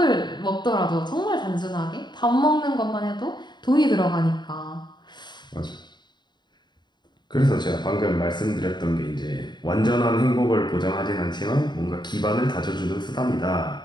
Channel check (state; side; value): late; right; 0.21 ms